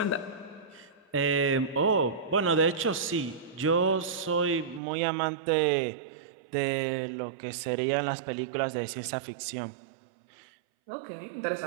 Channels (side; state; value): left; drops out; at 4.8 s